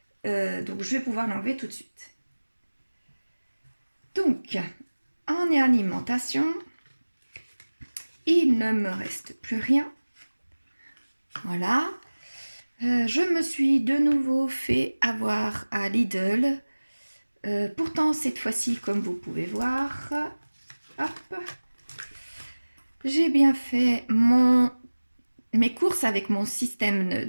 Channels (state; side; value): inverted; both; correlation -1.00